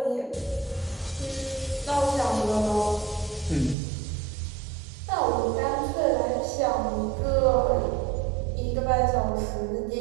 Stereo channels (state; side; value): drops out; left; at 3.8 s